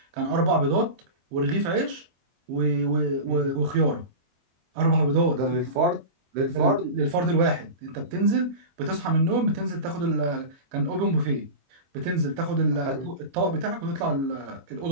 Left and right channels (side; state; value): left; late; 23 ms